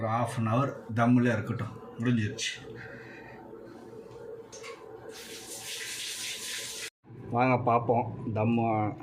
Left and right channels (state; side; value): identical; both; correlation 1.00